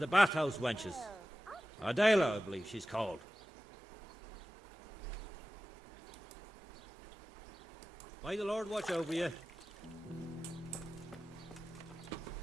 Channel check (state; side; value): normal; both; correlation 0.95